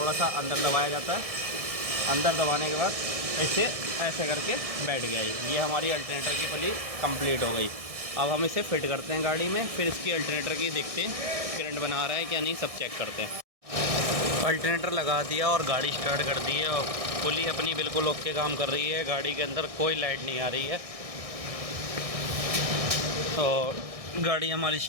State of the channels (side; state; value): left; late; 1.6 ms